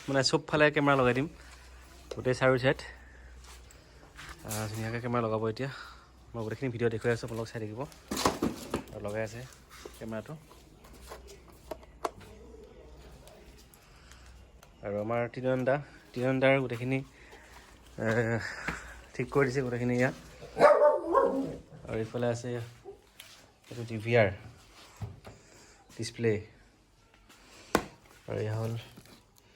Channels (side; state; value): both; identical; correlation 1.00